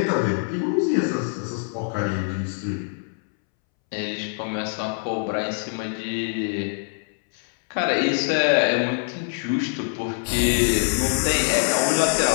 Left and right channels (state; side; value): silent; right; 63 dB below the other